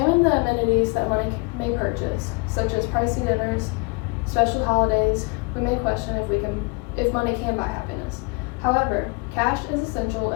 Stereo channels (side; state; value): right; quieter; 30.2 dB